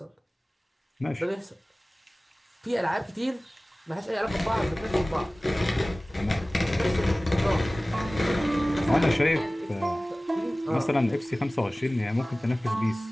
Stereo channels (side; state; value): both; normal; correlation 0.98